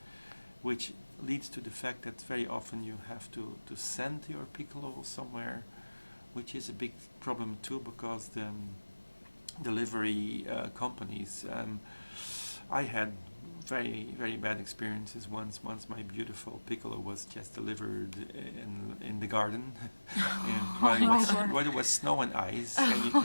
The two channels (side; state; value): both; inverted; correlation -1.00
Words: which leads to the fact that very often you have to send your piccolo somewhere, which is a big problem too, because the delivery companies, I had very bad experiences. Once my beautiful piccolo was just delivered in the garden, and while it was snow and ice.